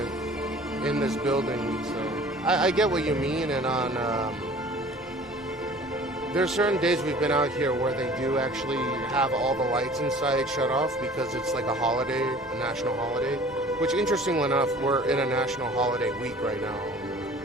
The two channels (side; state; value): both; normal; correlation 0.47